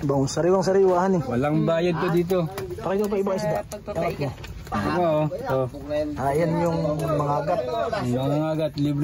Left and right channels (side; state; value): both; identical; correlation 1.00